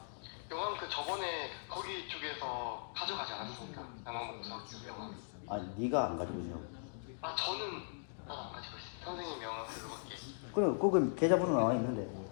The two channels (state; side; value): silent; right; digital silence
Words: 영화 그 저번에 거기 쪽에서 가져가지 않았습니까? 아니 네가 안 가지고 있어. 아 저는 가지고 있습니다. 선생님 명함으로 이렇게. 그럼 거기 계좌번호 나와 있는데.